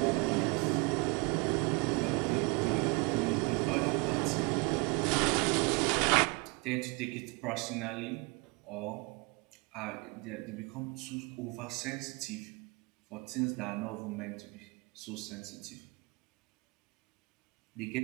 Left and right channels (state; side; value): quieter; left; 29.6 dB